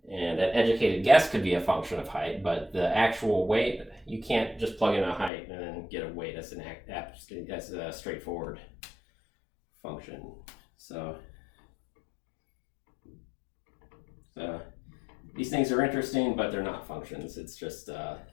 And that educated guess could be a function of height, but the actual weight, you can't just plug in a height and then get a weight. That's a straightforward function. So these things are interesting, but they're not functions. It's just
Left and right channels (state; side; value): drops out; right; at 5.3 s